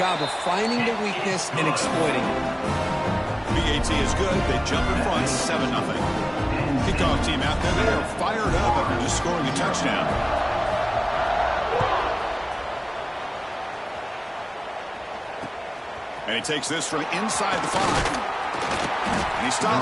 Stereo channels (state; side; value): identical; both; correlation 1.00